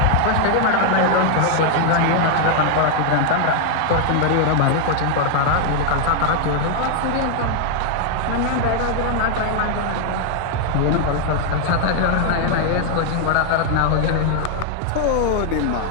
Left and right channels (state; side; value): different; both; correlation 0.00